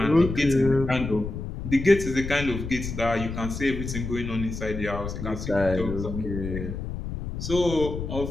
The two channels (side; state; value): left; noise; rumble, 6 dB below the sound